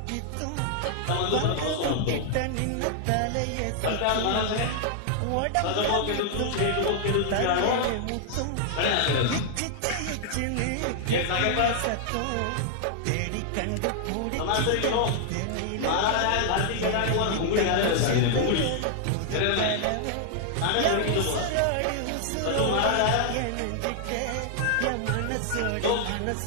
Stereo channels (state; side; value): different; both; correlation 0.00